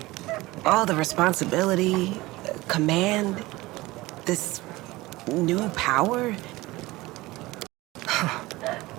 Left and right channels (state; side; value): quieter; left; 19.9 dB